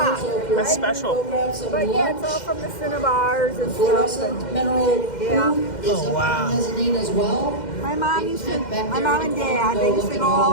That's special. But yeah, it's all from the cinnabars and Fluorescent mineral yeah. Oh, wow. mezzanine as well. My mom and dad, they used to go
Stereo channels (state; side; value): late; right; 2.1 ms